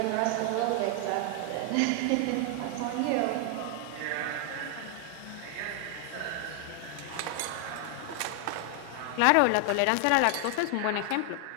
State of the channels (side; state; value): both; different; correlation 0.00